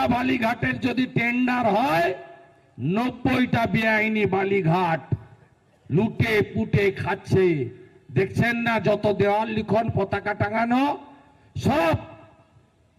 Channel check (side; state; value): both; identical; correlation 1.00